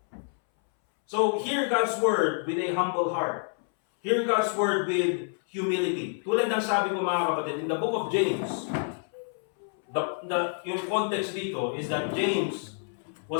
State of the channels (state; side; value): silent; right; 59 dB below the other